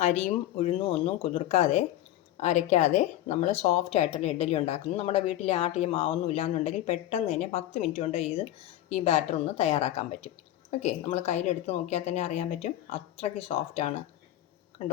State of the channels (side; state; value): right; quieter; 13.7 dB